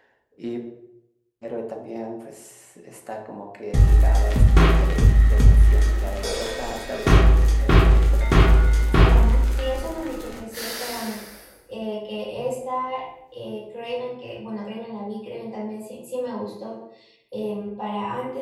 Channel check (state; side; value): identical; both; correlation 1.00